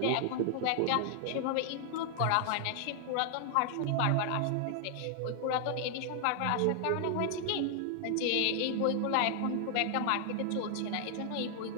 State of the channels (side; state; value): both; different; correlation 0.00